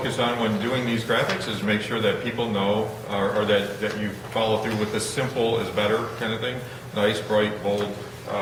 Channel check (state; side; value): identical; both; correlation 1.00